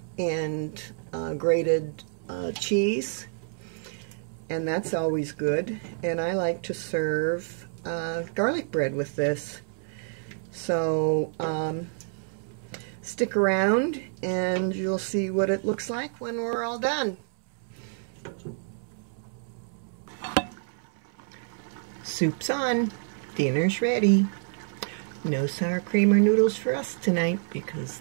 and grated cheese. And that's always good. And I like to serve garlic bread with this. So stick around and you'll see what it looks like when we're all done. Soup's on. Dinner's ready. No sour cream or noodles for us tonight because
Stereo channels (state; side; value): silent; left; 59 dB below the other